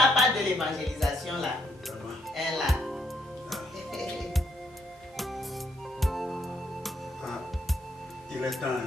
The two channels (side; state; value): both; normal; correlation 0.73